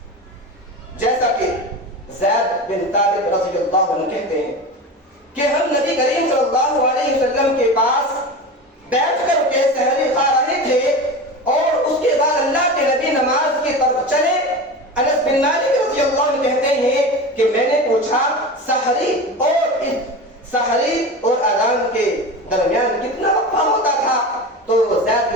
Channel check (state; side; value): normal; both; correlation 0.28